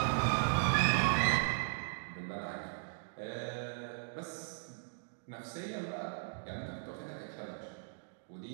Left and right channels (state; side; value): silent; left; digital silence